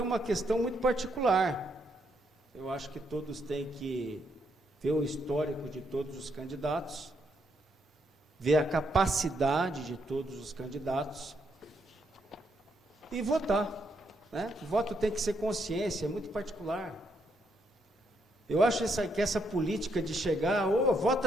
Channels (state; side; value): normal; both; correlation 0.76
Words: é uma questão muito particular. Eu acho que todos têm que ver o histórico de todos os candidatos, ver a capacidade de todos os candidatos e votar, né? O voto tem que ser consciência, é muito particular. Eu acho que essa política de chegar,